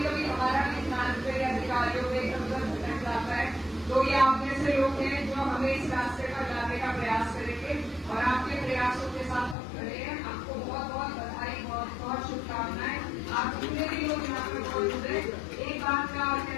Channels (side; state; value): right; drops out; at 9.6 s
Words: कभी हमारा भी ध्यान पे अधिकारियों में इधर भटक जाता है। तो ये आप जैसे लोग हैं जो हमें इस रास्ते पर लाने का प्रयास करेंगे और आपके प्रयासों के साथ हम खड़े हैं। आपको बहुत बहुत बधाई, बहुत बहुत शुभकामनाएं। आप जितने भी लोग यहाँ पर मौजूद हैं, एक बात का और